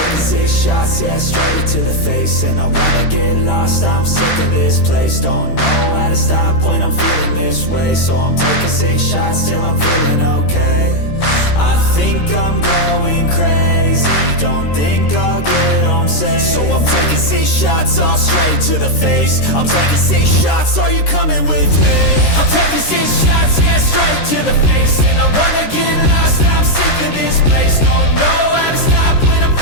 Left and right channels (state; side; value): late; right; 13 ms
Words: 6 shots, yeah, straight to the face. And I wanna get lost, I'm sick of this place. Don't know how to stop when I'm feeling this way. So I'm taking 6 shots till I'm feeling okay. I think I'm going crazy, don't think I'll get home safe. So I'm taking 6 shots, all straight to the face. I'm taking 6 shots, are you coming with me? I'm taking 6 shots, yeah, straight to the face. And I wanna get lost, I'm sick of this place. Don't know how to stop when I'm